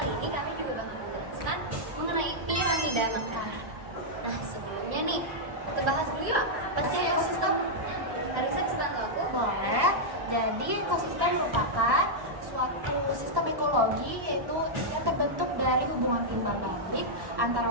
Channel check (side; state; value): left; late; 1.1 ms